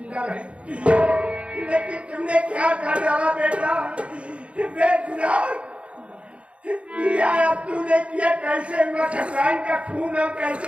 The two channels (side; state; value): left; late; 0.061 ms